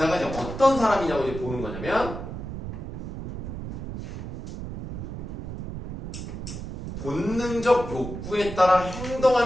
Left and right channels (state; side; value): noise; right; rumble, 8 dB below the sound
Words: 이제 어떤 사람이냐고 이제 보는 거냐면 본능적 욕구에 따라